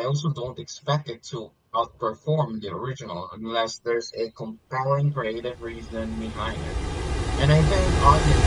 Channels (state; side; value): identical; both; correlation 1.00